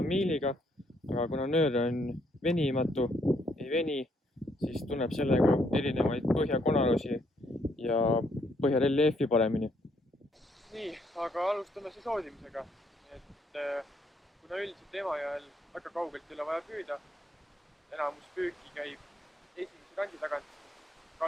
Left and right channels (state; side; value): normal; both; correlation 0.71